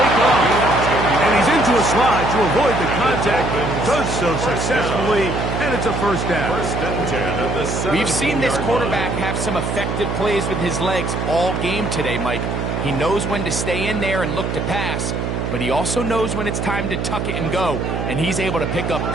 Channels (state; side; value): noise; right; hum, 2 dB below the sound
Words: off. And he's into a slide to avoid the contact. Does so successfully, and it's a first down. First and 10 at the 17-yard We've seen this quarterback have some effective plays with his legs all game today, Mike. He knows when to stay in there and look to pass, but he also knows when it's time to tuck it and go, and he's able to pick up